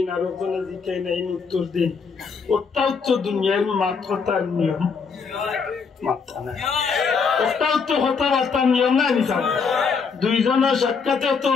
আর একজনে জিকাই না উত্তর দিন ওটাও তো দুনিয়ার মাত্রতার নিয়ম মাত্রা নাই ওটাও তো কথাবার্তার নিয়ম নাই নিশান দুইজনের সাক্ষাতে তো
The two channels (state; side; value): quieter; right; 5.4 dB